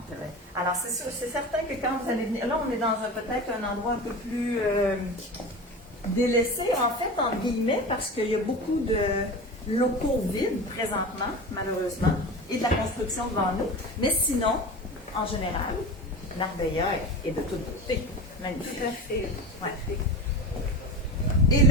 Alors, c'est sûr, c'est certain que quand vous allez venir, là, on est dans peut-être un endroit un peu plus délaissé, en fait, entre guillemets, parce qu'il y a beaucoup de locaux vides présentement, malheureusement, et de la construction devant nous. Mais sinon, en général, Marbella est de toute beauté. Magnifique. Tout à fait. Ouais. Et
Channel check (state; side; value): normal; both; correlation 0.28